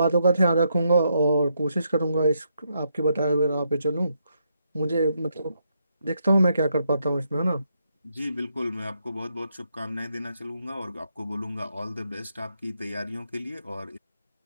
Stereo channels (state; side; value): inverted; both; correlation -0.78